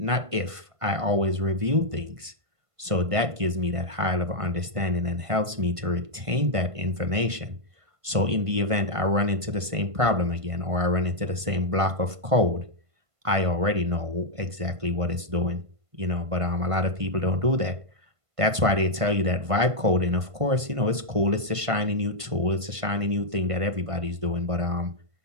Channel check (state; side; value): late; left; 1.5 ms